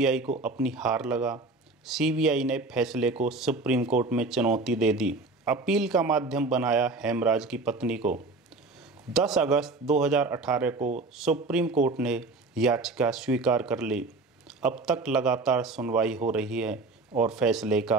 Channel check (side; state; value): left; quieter; 3.4 dB